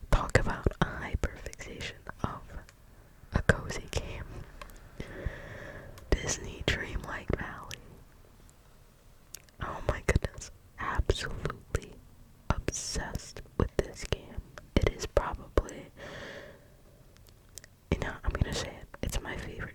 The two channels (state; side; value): identical; both; correlation 1.00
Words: talk about a hyperfixation of a cozy game. Disney Dreamlight Valley. Oh my goodness, absolutely obsessed with this game. It is probably, I'm gonna say it, it's my